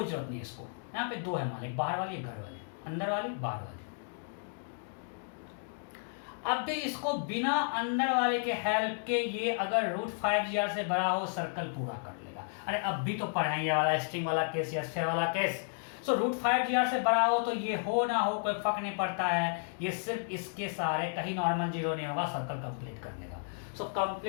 जरूरत नहीं है इसको। यहाँ पे दो है मान ली, बाहर वाली घर वाली, अंदर वाली बाहर वाली। अब भी इसको बिना अंदर वाले के हेल्प के ये अगर रूट 5GR से बड़ा हो सर्कल पूरा कर लेगा। अरे अब भी तो पढ़ाएंगे वाला स्ट्रिंग वाला केस या स्फीयर वाला केस। सो रूट 5GR से बड़ा हो तो ये हो ना हो कोई फर्क नहीं पड़ता है, ये सिर्फ इसके सहारे, कहीं नॉर्मल जीरो नहीं होगा, सर्कल कंप्लीट कर लेगा। So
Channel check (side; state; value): right; silent; digital silence